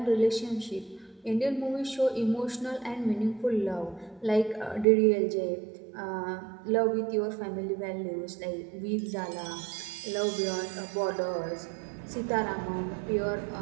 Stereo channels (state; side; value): drops out; left; at 4.9 s